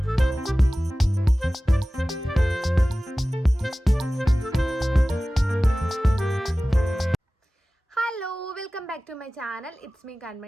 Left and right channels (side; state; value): both; normal; correlation 0.96